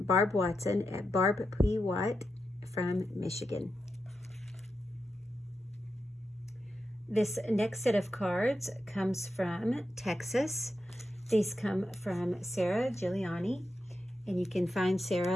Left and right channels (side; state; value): both; normal; correlation 0.87